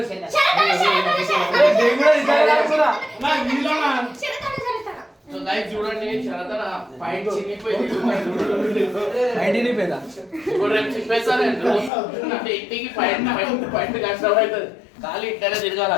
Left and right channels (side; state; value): right; drops out; at 11.9 s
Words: శరతన, శరతన. నేను కూడా ఇద్దరు రాసుకున్నా. నా వీళ్ళనా? శరతన, శరతన. సో గైస్ చూడండి శరతన పాయింట్ చినిగిపోయింది ఐడిని పేదా ఇప్పుడు రేపు చెప్పేస్తాను అంటే ఇంటికి పాయింట్ పాయింట్ కష్టం అవుతుంది ఖాళీ ఇంటనే